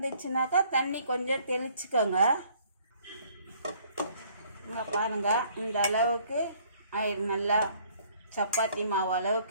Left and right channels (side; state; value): both; inverted; correlation -0.60